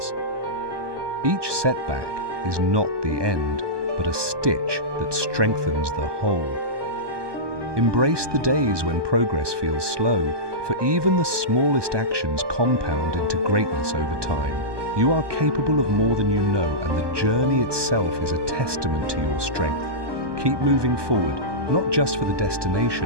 Each setback is not the end, but a stitch that strengthens the whole. Embrace the days when progress feels slow, for even the smallest actions compound into greatness over time. You are capable of more than you know, and the journey itself is a testament to your strength. Keep moving forward, not just for the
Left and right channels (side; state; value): left; late; 1.2 ms